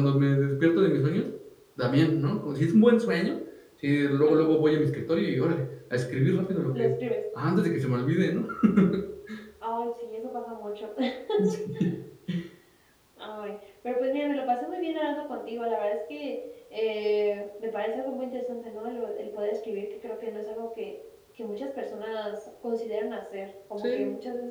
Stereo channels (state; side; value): identical; both; correlation 1.00